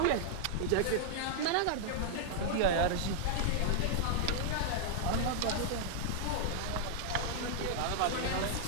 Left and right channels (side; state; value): both; different; correlation -0.01